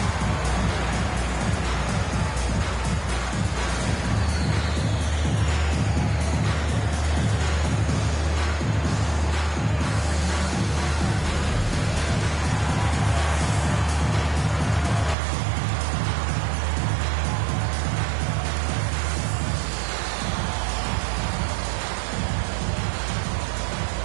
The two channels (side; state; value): left; drops out; at 15.2 s